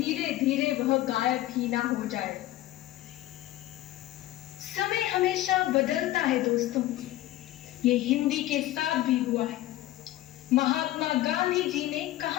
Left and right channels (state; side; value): quieter; right; 15.2 dB